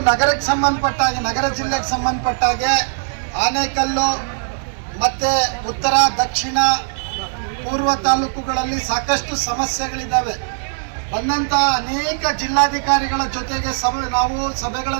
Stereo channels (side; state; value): left; silent; digital silence